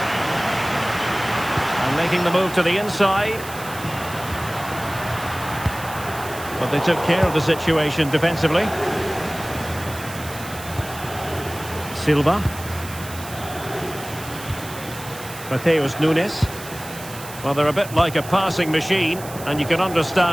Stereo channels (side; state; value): right; noise; hiss, 14 dB below the sound